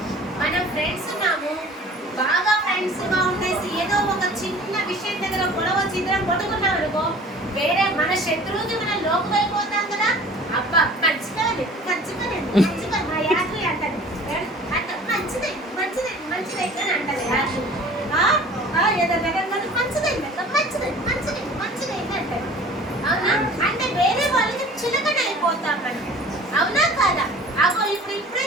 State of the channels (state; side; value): normal; both; correlation 0.46